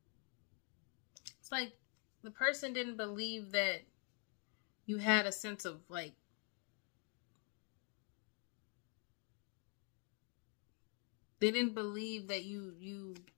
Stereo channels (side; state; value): right; quieter; 38.8 dB